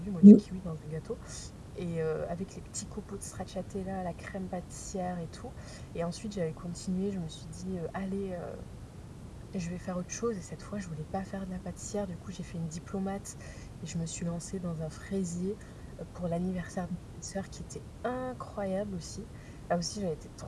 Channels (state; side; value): identical; both; correlation 1.00